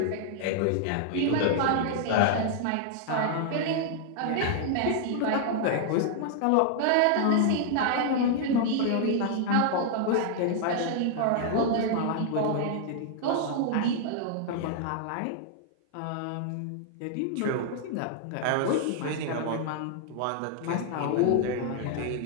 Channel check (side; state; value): both; different; correlation -0.01